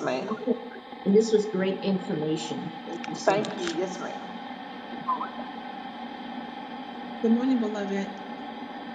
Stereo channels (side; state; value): both; identical; correlation 1.00